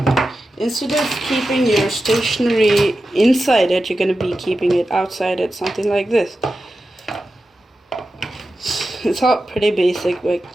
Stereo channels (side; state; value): both; normal; correlation 0.92